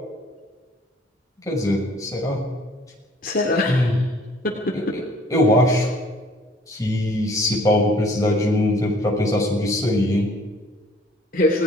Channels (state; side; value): normal; both; correlation 0.56